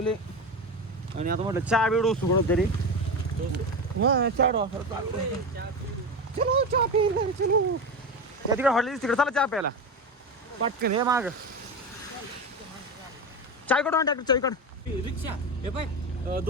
आणि आता म्हटलं चहा बिडू सुगड तरी चलो चहा पी चलो त्या तिकडे हॉटेल तिकडे चला चहा प्यायला पटकन हे माग चाय कडून ट्रॅक्टर चाय कड रिक्षा हे पाय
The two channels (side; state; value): both; normal; correlation 0.21